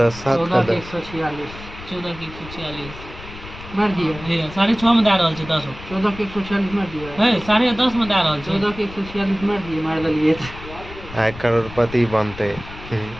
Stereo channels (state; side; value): noise; left; rumble, 15 dB below the sound